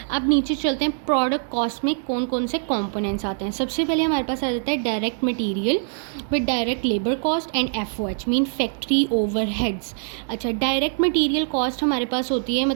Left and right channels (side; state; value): left; silent; digital silence